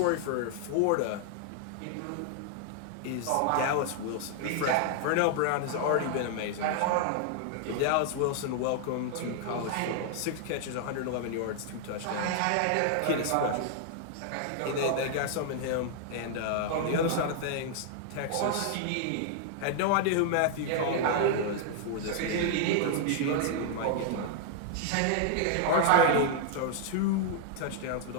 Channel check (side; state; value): both; different; correlation 0.00